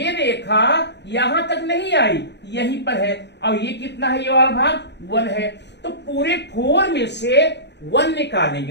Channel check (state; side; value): late; right; 0.50 ms